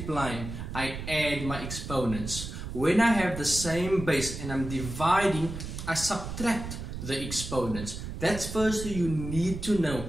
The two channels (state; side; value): noise; right; rumble, 8 dB below the sound